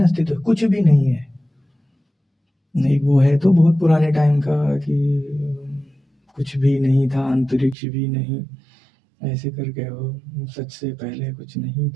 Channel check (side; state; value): left; drops out; at 7.8 s